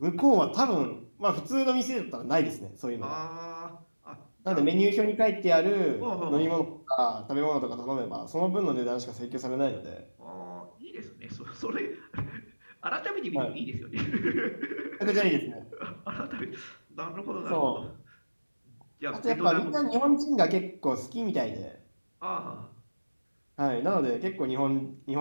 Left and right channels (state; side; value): inverted; both; correlation -1.00